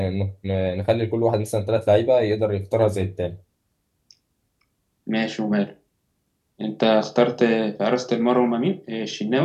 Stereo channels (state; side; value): identical; both; correlation 1.00